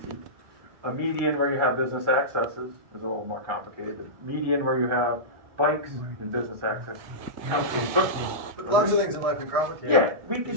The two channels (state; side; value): late; left; 1.9 ms